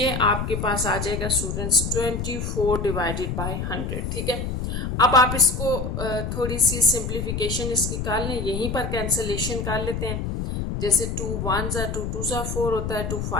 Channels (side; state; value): left; noise; rumble, 3 dB below the sound